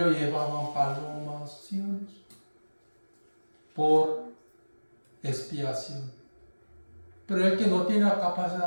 llevaban palomas, ¿sí o no? Por expiación. Pero el que no tenía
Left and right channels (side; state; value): both; inverted; correlation -1.00